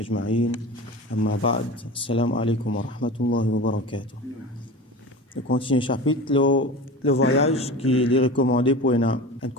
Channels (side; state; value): both; normal; correlation 0.32